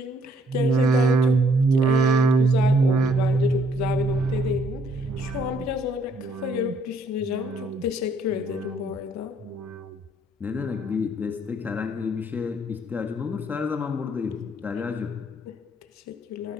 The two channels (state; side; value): normal; both; correlation 0.66